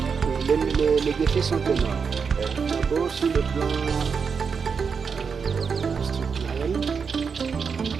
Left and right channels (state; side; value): quieter; left; 5.9 dB